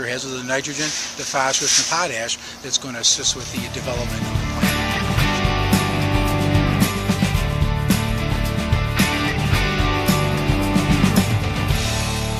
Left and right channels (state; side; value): identical; both; correlation 1.00